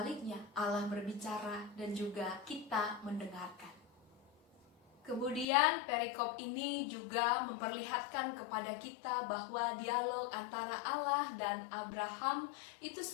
Allah berbicara dan juga kita mendengarkan. Kemudian perikop ini juga memperlihatkan kepada kita bahwa dialog antara Allah dan Abraham itu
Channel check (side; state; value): right; drops out; at 5.5 s